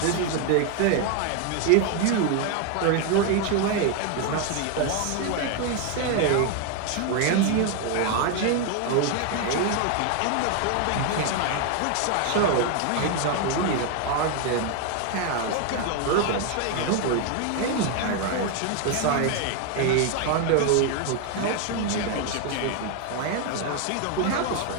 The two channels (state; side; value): different; both; correlation 0.01